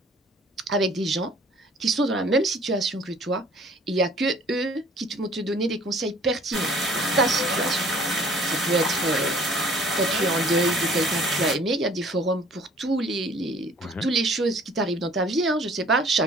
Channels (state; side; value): normal; both; correlation 0.53